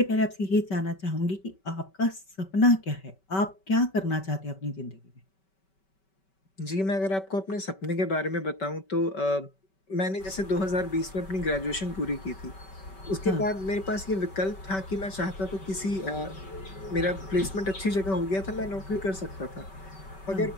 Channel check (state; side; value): late; right; 5.2 ms